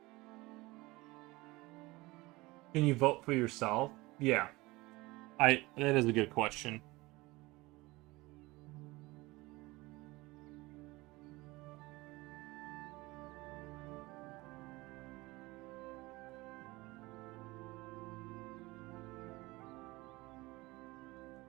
Can you vote for yourself? Yeah. That is a good question.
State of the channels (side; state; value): left; quieter; 21.5 dB